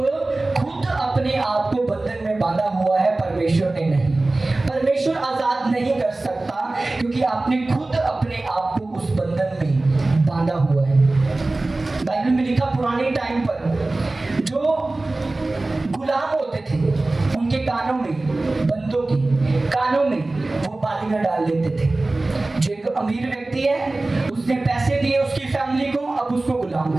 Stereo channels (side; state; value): left; quieter; 3.0 dB